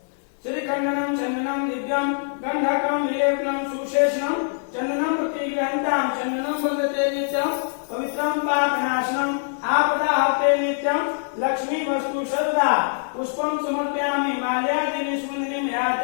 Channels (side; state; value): right; silent; digital silence